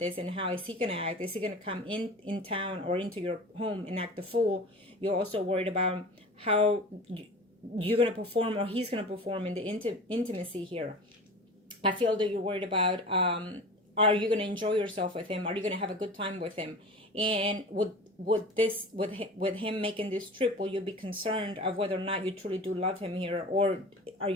this, and how is he going to act? Is he going to come in town or into your home and act the fool? You're also worried about how you're going to perform, or he's going to perform in the intimacy here. I feel that you're worried about are you going to enjoy yourself with him? Are you going to have a good time with him? And with him making this trip, will you be concerned of whether or not you truly do love him here, or are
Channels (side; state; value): both; normal; correlation 0.36